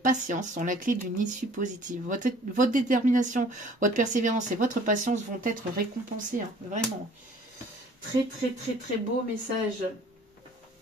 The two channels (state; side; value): normal; both; correlation 0.53